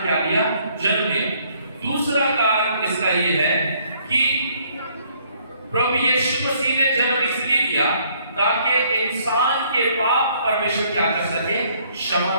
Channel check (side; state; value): both; inverted; correlation -0.65